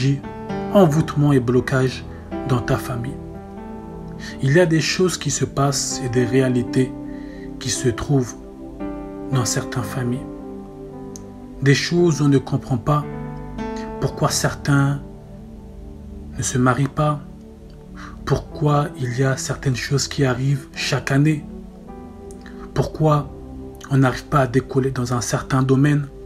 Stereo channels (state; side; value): identical; both; correlation 1.00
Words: envoûtement et blocage dans ta famille. Il y a des choses qui se passent et des réalités qui se trouvent dans certaines familles. Des choses où on ne comprend pas pourquoi certains ne se marient pas, pourquoi il y a certaines choses qui arrivent chaque année, pourquoi on n'arrive pas à décoller dans un certain domaine.